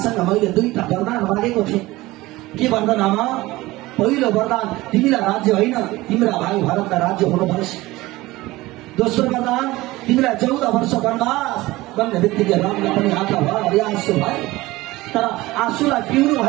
मैले दुईटा वरदान मागेको थिएँ। के वरदान आमा? पहिलो वरदान तिमीलाई राज्य होइन, तिम्रा भाइ भरतलाई राज्य हुनुपर्छ। दोस्रो वरदान तिमीलाई 14 वर्ष वनवास भन्ने बित्तिकै रामलाई पनि आँखा भरि आँसु भयो। तर आँसुलाई पिउनु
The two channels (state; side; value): quieter; left; 19.1 dB